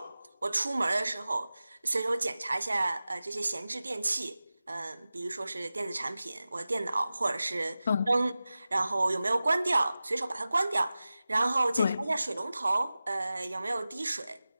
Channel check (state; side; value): inverted; both; correlation -0.95